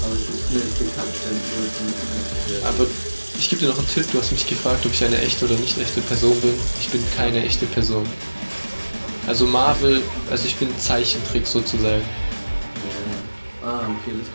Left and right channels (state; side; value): inverted; both; correlation -1.00